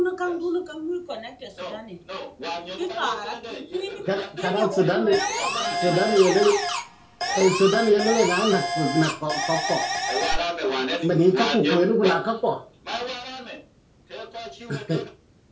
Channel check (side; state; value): both; identical; correlation 1.00